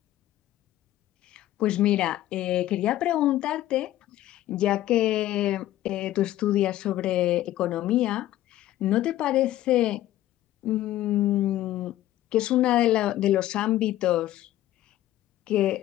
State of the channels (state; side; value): quieter; right; 14.2 dB